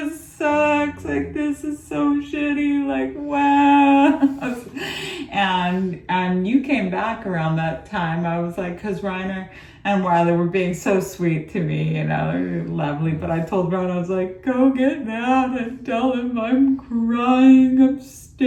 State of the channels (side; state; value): both; identical; correlation 1.00